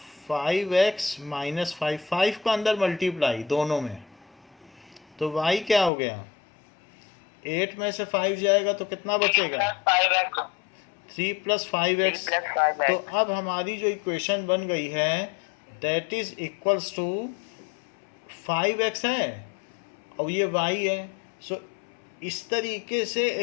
5x माइनस 5 का अंदर मल्टीप्लाई दोनों में, तो y क्या हो गया 8 में से 5 जाएगा तो कितना बचेगा 3 प्लस 5x। तो अब हमारी जो इक्वेशन बन गई है that is equals to 5x है और ये y है। सो इस तरीके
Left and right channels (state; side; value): drops out; right; at 5.9 s